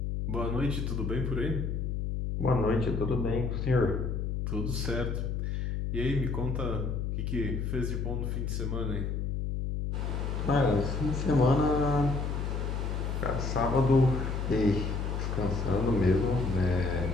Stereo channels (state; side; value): noise; left; hum, 1 dB below the sound